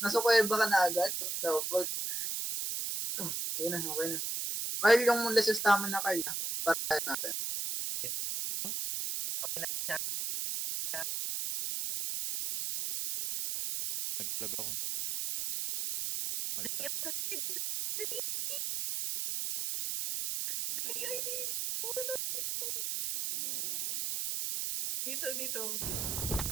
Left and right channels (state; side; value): noise; right; hiss, 2 dB below the sound